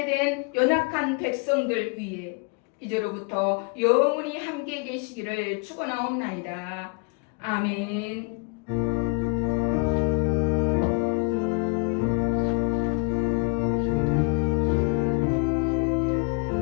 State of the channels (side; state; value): right; quieter; 34.5 dB